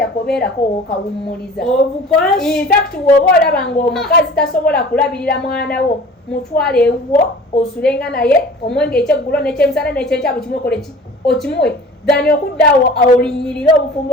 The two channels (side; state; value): both; normal; correlation 0.43